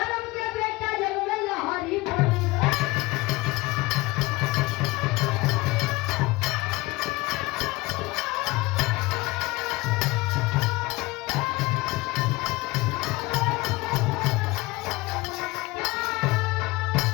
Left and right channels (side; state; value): right; quieter; 21.4 dB